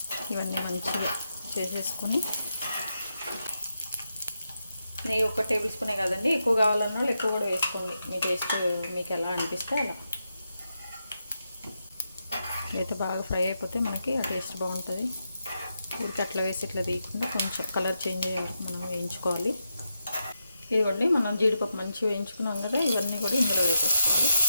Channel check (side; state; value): both; inverted; correlation -0.86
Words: ఇవన్నీ మంచిగా చేసేసుకుని నెయ్యి 1 టేబుల్ స్పూనే కదండి, ఎక్కువ కావాలన్న వాళ్ళు ఎక్కువ కూడా వేసుకోండి, మీ టేస్ట్ మీకు ఎలా అనిపిస్తే అలా. అయితే బాగా ఫ్రై అయిపోతే మనకి ఆ టేస్ట్ బాగుంటుంది. ఊరికి అట్లా వేసి ఇట్లా తీయకుండా కొంచెం కలర్ చేంజ్ అయ్యే వరకు మనం వేయించుకోవాలి. ఇవ్వండి మనం జీడిపప్పు మంచిగా వేయించుకున్నాం కదా, ఇవన్నీ కూడా ఇందులో వేసేసుకోవాలి.